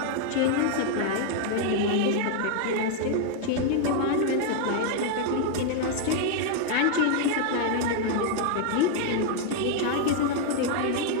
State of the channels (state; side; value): different; both; correlation 0.00